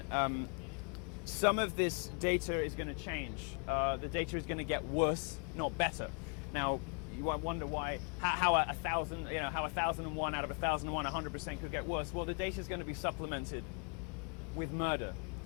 some of this data is going to change. The data is going to get worse, not better. Now, you might wonder why, how 1,001 out of 1,001, 100% could get worse. Well, the data is going to be supplemented with murder.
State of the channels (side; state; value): right; quieter; 39.8 dB